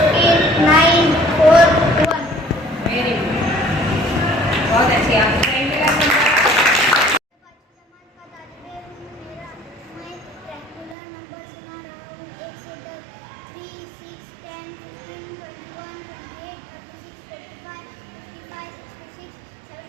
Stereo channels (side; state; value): left; drops out; at 11.0 s